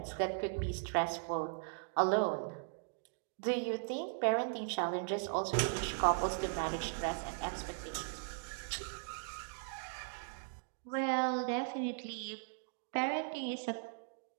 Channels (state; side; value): silent; left; digital silence